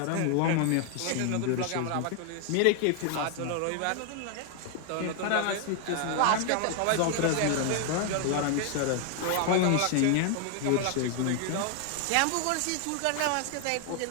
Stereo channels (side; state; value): both; different; correlation 0.00